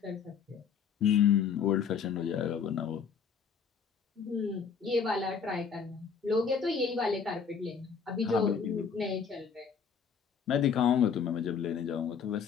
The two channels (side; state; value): right; quieter; 6.5 dB